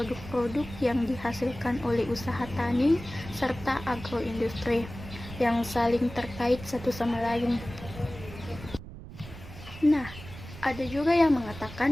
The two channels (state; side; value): noise; right; rumble, 14 dB below the sound